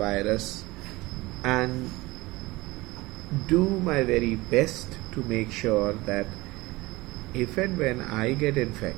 and do my very best to make sure that if and when I get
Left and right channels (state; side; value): quieter; left; 21.1 dB